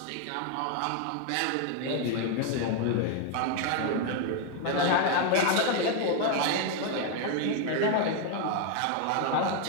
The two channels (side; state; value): both; different; correlation 0.01